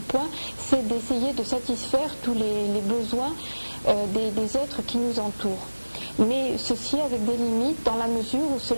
point, c'est d'essayer de satisfaire tous les besoins des êtres qui nous entourent. Mais ceci avec des limites dans la mesure où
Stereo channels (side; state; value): both; inverted; correlation -1.00